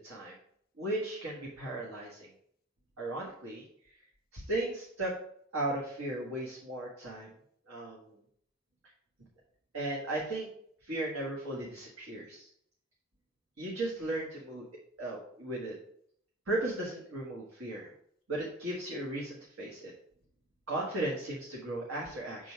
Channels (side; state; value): both; normal; correlation 0.35